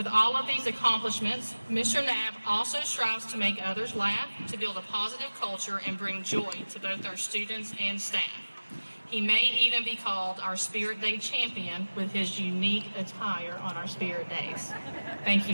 all of these accomplishments, Mr. Knapp also strives to make others laugh, to build a positive culture, and bring joy to both our students and staff. He may even be called our Spirit Day champion with his unique attire on our Spirit Days. Thank you,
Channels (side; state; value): both; inverted; correlation -1.00